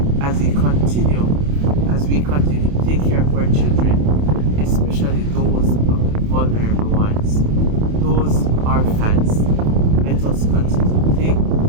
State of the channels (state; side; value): late; left; 28 ms